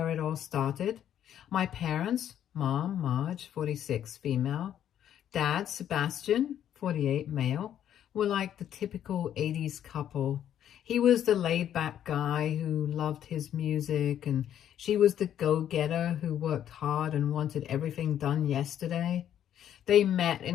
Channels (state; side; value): quieter; right; 10.4 dB